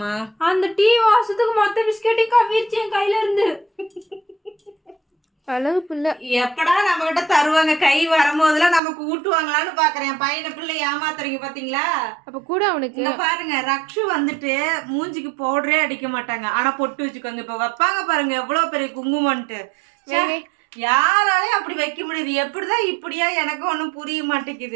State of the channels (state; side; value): drops out; left; at 8.8 s